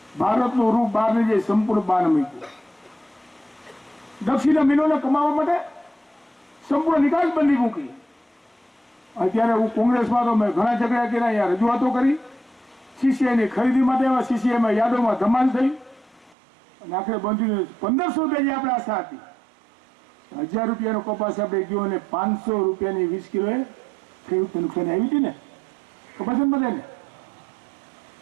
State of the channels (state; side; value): drops out; left; at 16.4 s